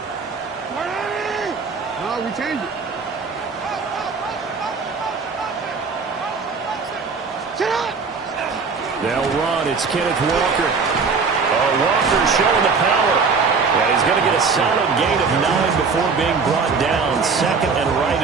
No, we change it. They'll run. It's Kenneth Walker. Walker showing the power. And he's going to get a solid gain of 9 before being brought down. Second and right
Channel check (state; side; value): quieter; left; 5.0 dB